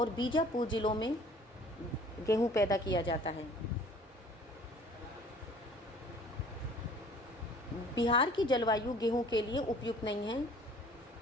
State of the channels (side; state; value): both; normal; correlation 0.51